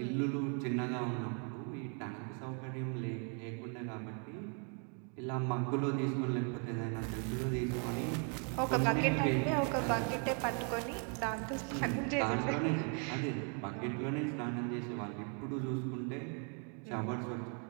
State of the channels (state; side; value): quieter; left; 40.0 dB